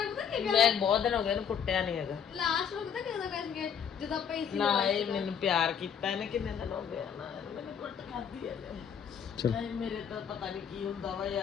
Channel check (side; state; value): right; quieter; 7.8 dB